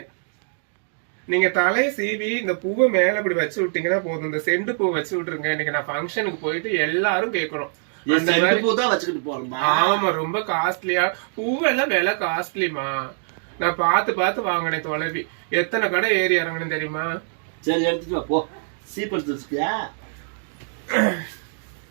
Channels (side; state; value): left; silent; digital silence